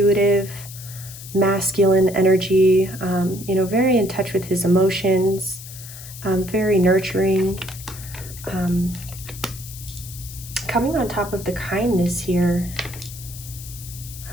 masculine energy, very in touch with his emotions, very nurturing, coming on top of the kindness here.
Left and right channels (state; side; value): noise; left; hiss, 14 dB below the sound